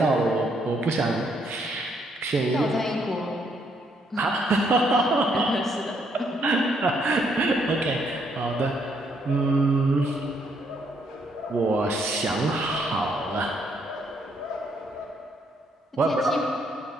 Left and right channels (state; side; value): normal; both; correlation 0.72